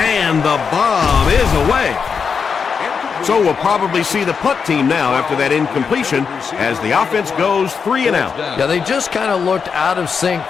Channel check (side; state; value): right; quieter; 6.0 dB